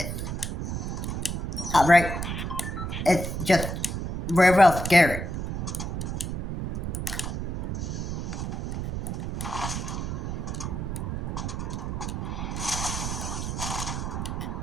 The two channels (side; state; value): right; noise; rumble, 3 dB below the sound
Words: Alright? It's just very, real scary.